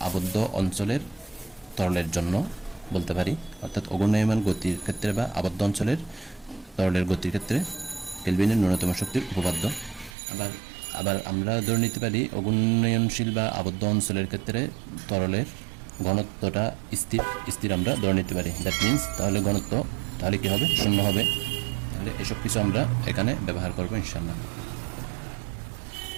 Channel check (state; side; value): drops out; left; at 10.2 s